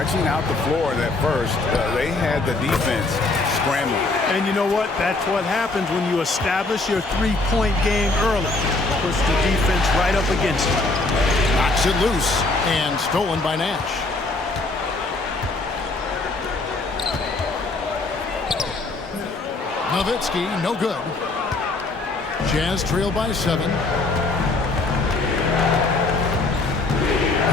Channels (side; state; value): right; quieter; 3.3 dB